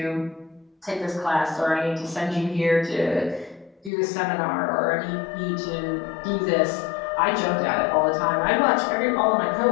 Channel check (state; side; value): drops out; right; at 3.9 s